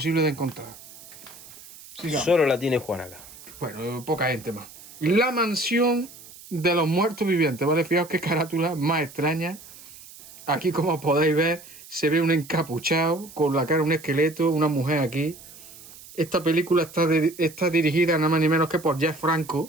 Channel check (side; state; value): right; noise; hiss, 19 dB below the sound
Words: de encontrar. Sigamos. Solo la tiene Juan acá. Bueno, poca gente más. La mansión de los muertos vivientes, ¿vale? Fijaos qué carátula más extraña. Aquí, como podéis ver, se ve un encapuchado con la cara de un esqueleto, una mujer aquí. Esta película está dirigida nada más ni menos que por Jeff Franco,